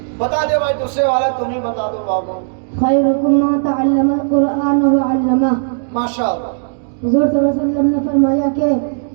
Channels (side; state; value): left; silent; digital silence